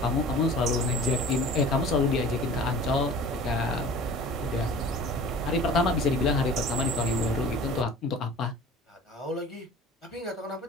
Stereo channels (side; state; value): both; normal; correlation 0.43